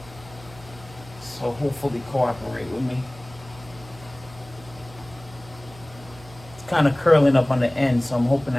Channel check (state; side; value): noise; right; hum, 20 dB below the sound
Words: So hopefully cooperate with me. It's kind of curling up on the end, so I'm hoping